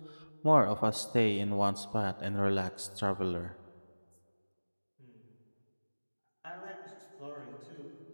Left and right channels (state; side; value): inverted; both; correlation -1.00